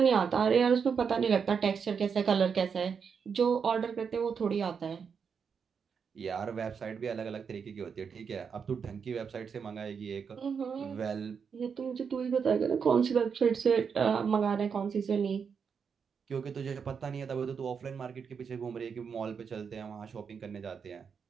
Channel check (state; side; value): quieter; left; 6.4 dB